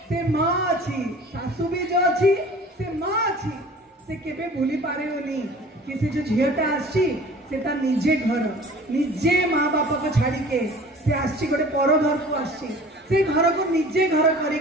से माँ अच्छी, सासू भी जो अच्छी से माँ अच्छी, से केबे भूली पारे होनी कि से जो झीलटा आसी से ता निजे घर निजे माँ बापा को छाड़ी के से आसी गोटे पर घर को आसी, से घर को निजे घर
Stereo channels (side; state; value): both; normal; correlation 0.45